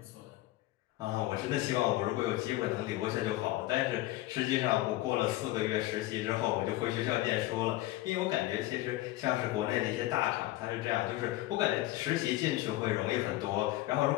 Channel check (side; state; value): right; quieter; 16.9 dB